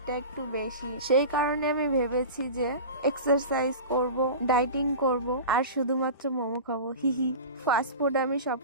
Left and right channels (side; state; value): both; inverted; correlation -0.31